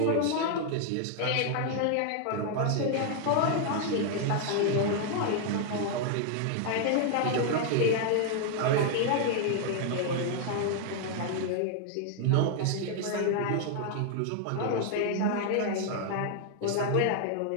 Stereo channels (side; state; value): both; different; correlation 0.00